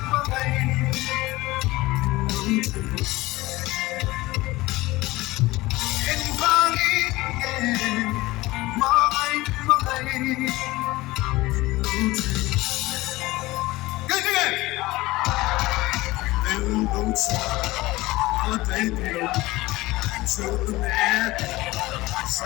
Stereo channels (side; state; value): right; quieter; 19.7 dB